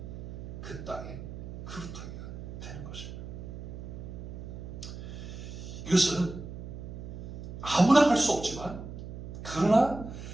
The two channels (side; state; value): right; noise; hum, 10 dB below the sound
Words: 그 땅에 그루터기가 되는 것입니다. 이것은 아무나 할 수 없지만 그러나